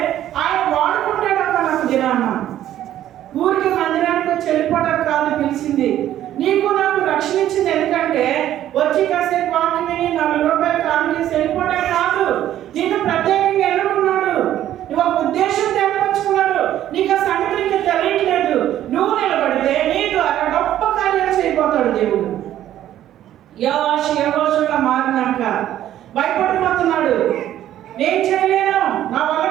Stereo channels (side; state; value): left; quieter; 12.2 dB